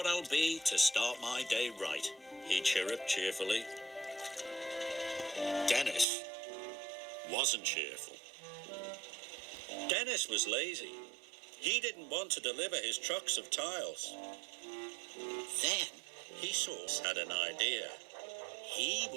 I'll be to start my day right, he chirruped cheerfully. Dennis wasn't cheerful. Dennis was lazy. He didn't want to deliver his trucks of tiles. Then he had an idea. He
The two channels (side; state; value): left; drops out; at 6.1 s